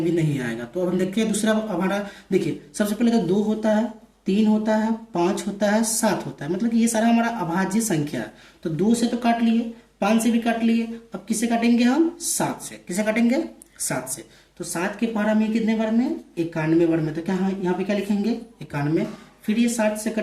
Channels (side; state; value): both; identical; correlation 1.00